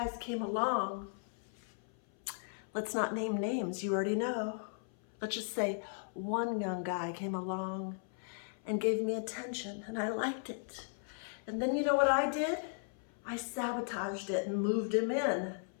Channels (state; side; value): silent; right; 53 dB below the other